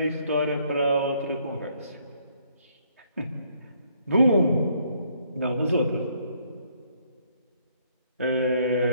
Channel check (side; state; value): both; inverted; correlation -0.68